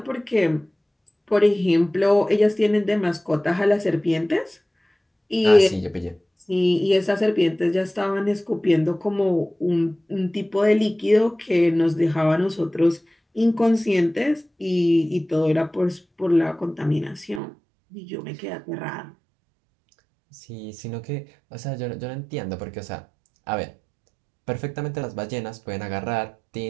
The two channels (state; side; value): drops out; left; at 17.4 s